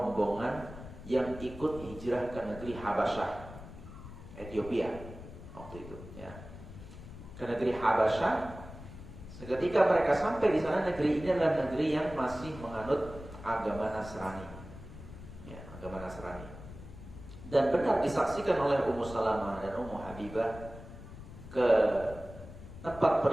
yang ikut hijrah ke negeri Habasyah, Ethiopia waktu itu ya. Ke negeri Habasyah. Seketika mereka sampai di sana, negeri ini adalah negeri yang masih menganut agama Nasrani. Ya, agama Nasrani. Dan benar disaksikan oleh Ummu Salamah dan Ummu Habibah, ke tempat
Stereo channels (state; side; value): noise; left; rumble, 14 dB below the sound